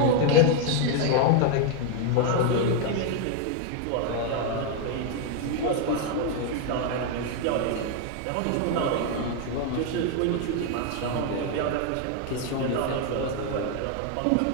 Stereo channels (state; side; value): different; both; correlation 0.00